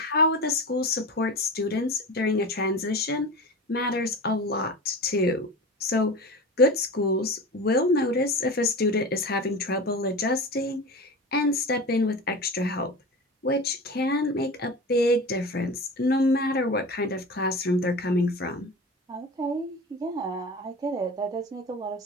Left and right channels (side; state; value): both; normal; correlation 0.31